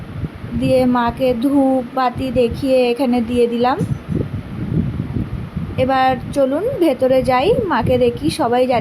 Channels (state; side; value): identical; both; correlation 1.00